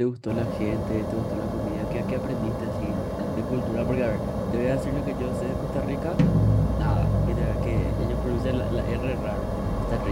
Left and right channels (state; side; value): identical; both; correlation 1.00